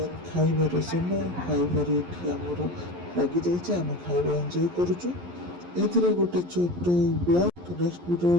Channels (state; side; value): late; left; 11 ms